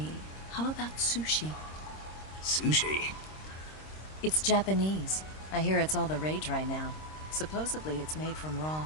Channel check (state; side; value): late; right; 26 ms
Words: How about sushi? Sushi? It's Japanese. I hear it's all the rage right now. Supposedly it's made from raw